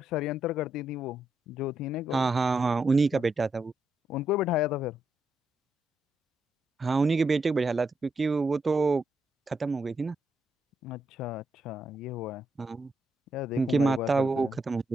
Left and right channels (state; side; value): normal; both; correlation 0.81